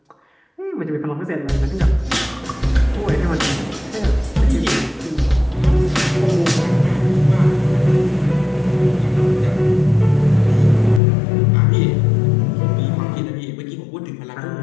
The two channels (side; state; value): right; drops out; at 11.0 s